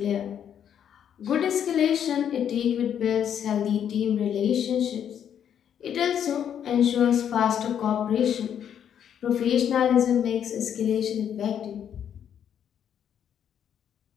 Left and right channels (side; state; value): right; quieter; 9.0 dB